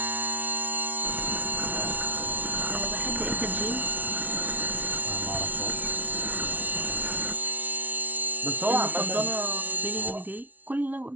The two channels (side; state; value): left; late; 0.078 ms